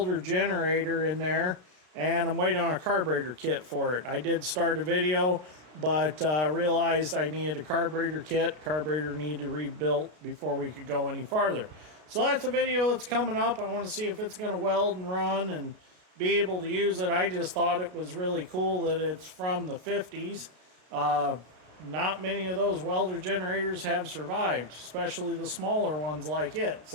generator in there, and I'm waiting on a carburetor kit for it. I did start a video, but realized I needed a carburetor kit. Carburetor needed to rebuilt before we could go any farther. So that's a video that's coming up. I want to see if it's going to weld and run and be able to use it. I just thought it was really cool that it's from the 50s. Not many of those welder generators have survived, especially the smaller ones like it.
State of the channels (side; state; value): left; late; 33 ms